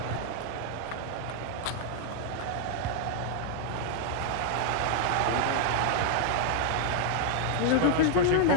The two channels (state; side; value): different; both; correlation -0.01